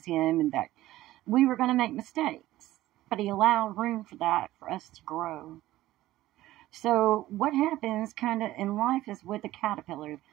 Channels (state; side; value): quieter; left; 15.7 dB